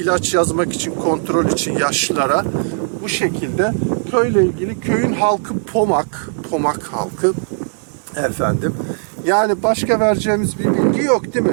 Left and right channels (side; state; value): left; silent; 61 dB below the other